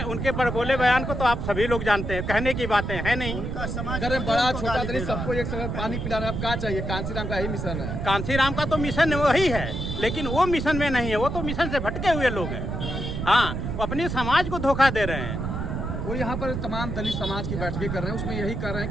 उनके बोले बयान को तो आप सभी लोग जानते हैं, कहने की बातें है नहीं। बड़ा छोटा दलित सबको एक समय पानी पिला रहा है, अब क्या चाहिए? कांसीराम का यही मिशन है। कांसीराम का तो मिशन वही है, लेकिन वो मिशन में नहीं है, वो तो मिशन से भटके हुए लोग हैं। हाँ, वो अपने समाज को धोखा दे रहे हैं। वो यहाँ पर तमाम दलित समाज की बैठकें कर रहे हैं, उसमें यही कर रहे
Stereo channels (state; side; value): noise; right; rumble, 3 dB below the sound